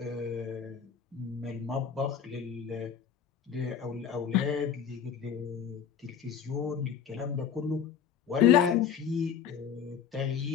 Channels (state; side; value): quieter; right; 7.8 dB